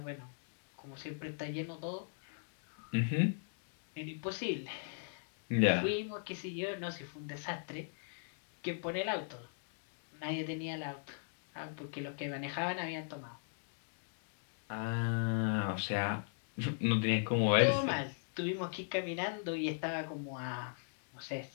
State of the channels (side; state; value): right; silent; digital silence